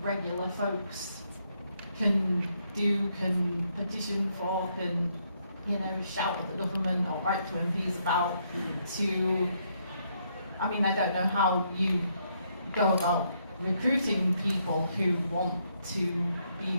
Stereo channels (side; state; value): both; inverted; correlation -0.74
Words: regular folks can do, can petition for, can, you know, shout at the government or write to MPs about to, I mean, I don't know how you go about recruiting people who want to be